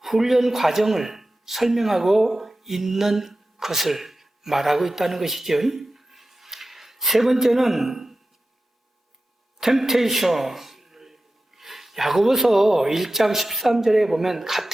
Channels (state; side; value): normal; both; correlation 0.93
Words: 훈련 과정을 설명하고 있는 것을 말하고 있다는 것이죠. 세 번째는 temptation. 야고보서 1장 13절에 보면